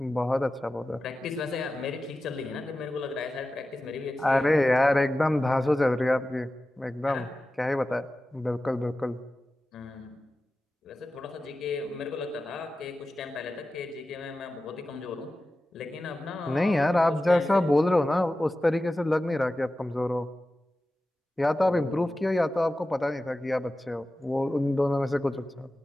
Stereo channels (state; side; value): normal; both; correlation 0.94